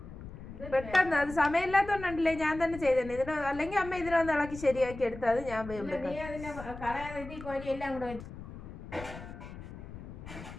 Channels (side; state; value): left; noise; rumble, 12 dB below the sound